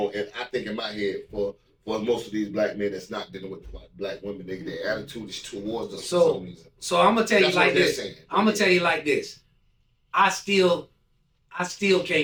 And I think in my head for most of these black men that's not dealing with black women, their attitude is towards us for some reason. So I'm gonna tell you That's like what they're this. saying. I'm gonna tell you like this. I still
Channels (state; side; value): identical; both; correlation 1.00